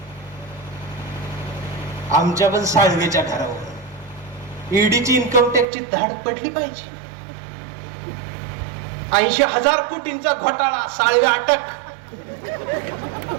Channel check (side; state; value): left; drops out; at 5.7 s